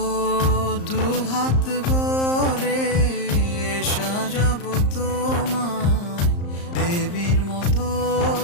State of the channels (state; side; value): late; right; 34 ms